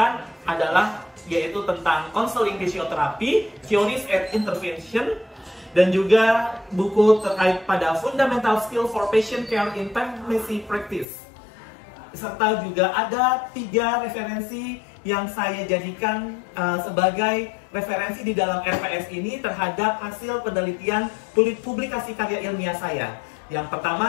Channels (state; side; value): drops out; right; at 11.1 s